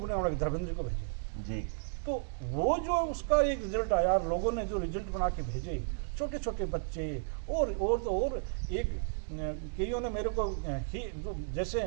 धर्मेंद्र को भेजें जी। तो वो जो उसका एक रिजल्ट आया, लोगों ने जो रिजल्ट बना के भेजे, छोटे छोटे बच्चे और एक कईयों ने मेरे को जैसे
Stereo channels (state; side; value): silent; left; digital silence